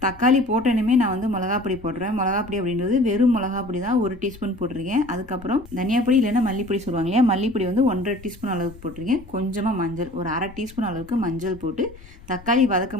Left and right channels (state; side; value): noise; left; rumble, 20 dB below the sound